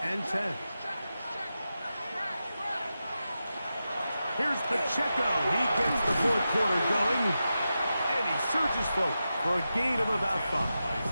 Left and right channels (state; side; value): inverted; both; correlation -0.91